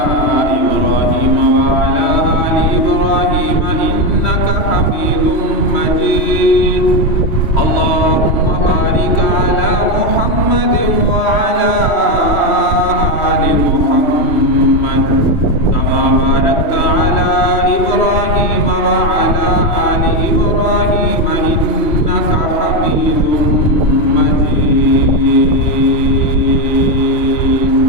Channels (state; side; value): late; right; 3.1 ms